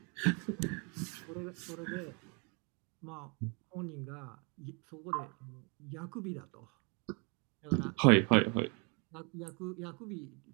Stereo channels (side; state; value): left; quieter; 33.2 dB